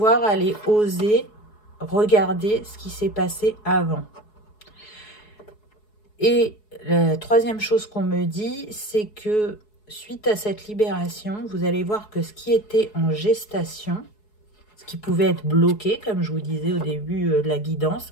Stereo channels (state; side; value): late; right; 4.7 ms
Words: aller oser regarder ce qui s'est passé avant. Et la troisième chose qu'on me dit, c'est que suite à cette libération, vous allez voir que ce qui était en gestation, ce qui pouvait être bloqué, comme je vous disais au début de la guidance,